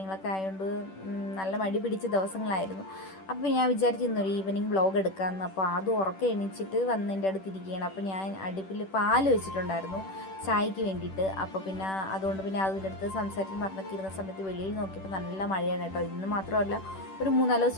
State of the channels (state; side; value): late; right; 10 ms